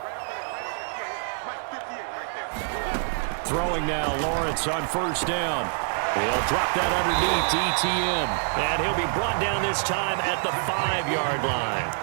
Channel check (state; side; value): silent; left; 61 dB below the other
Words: Throwing now, Lawrence on 1st down. He'll drop that underneath to ETN. And he'll be brought down this time at the 5-yard